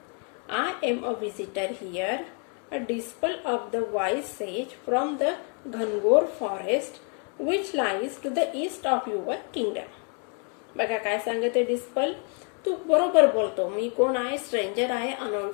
I am a visitor here, a disciple of the wise sage from the Ghangor forest which lies to the east of your kingdom. बघा काय सांगते डिस्पल, तू बरोबर बोलतो, मी कोण आहे, स्ट्रेंजर आहे,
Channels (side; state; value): right; quieter; 40.0 dB